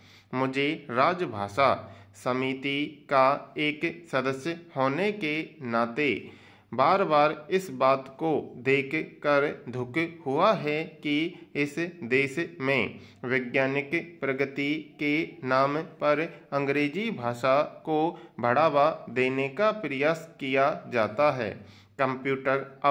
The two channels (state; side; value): identical; both; correlation 1.00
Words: मुझे राजभाषा समिति का एक सदस्य होने के नाते बार बार इस बात को देख कर दुख हुआ है कि इस देश में वैज्ञानिक प्रगति के नाम पर अंग्रेजी भाषा को बढ़ावा देने का प्रयास किया जाता है। कंप्यूटर